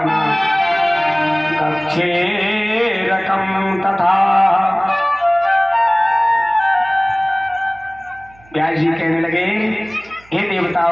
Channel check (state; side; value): noise; right; hum, 27 dB below the sound